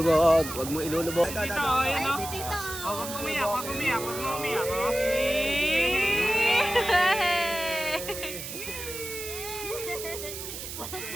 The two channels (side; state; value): right; noise; hiss, 8 dB below the sound